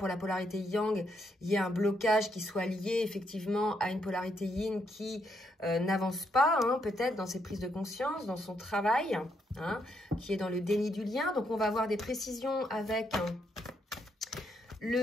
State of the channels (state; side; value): normal; both; correlation 0.76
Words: la polarité yang, il y ait un blocage qui soit lié effectivement à une polarité yin qui n'avance pas, hein, peut-être dans ses prises de conscience, dans son travail, hein, qui est dans le déni du lien. Donc, on va avoir des précisions avec